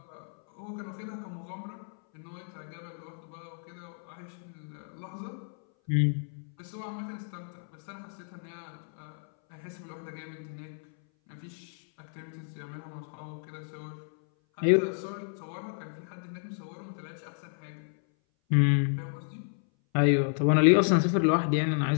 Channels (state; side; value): silent; right; 57 dB below the other